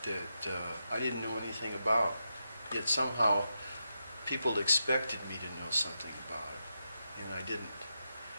that I didn't know anything about. Yet somehow people expected me to know something about it, and I didn't.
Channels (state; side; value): inverted; both; correlation -0.86